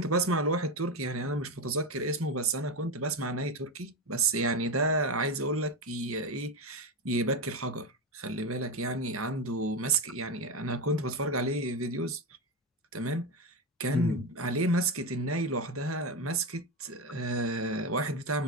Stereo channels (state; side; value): normal; both; correlation 0.15